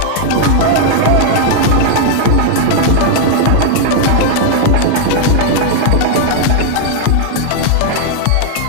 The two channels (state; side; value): different; both; correlation 0.00